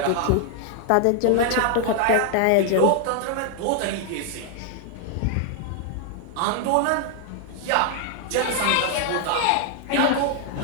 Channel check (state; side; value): different; both; correlation 0.00